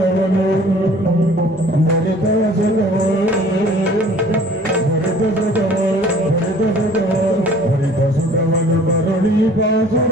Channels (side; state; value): both; normal; correlation 0.51